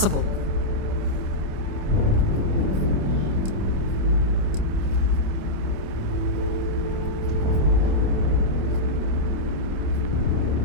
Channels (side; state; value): left; late; 26 ms